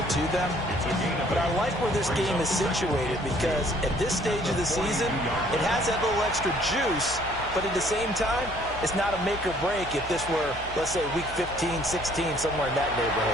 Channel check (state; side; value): noise; left; hum, 15 dB below the sound